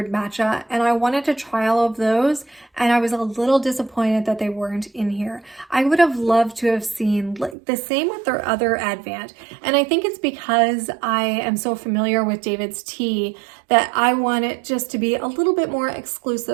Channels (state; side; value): drops out; left; at 7.6 s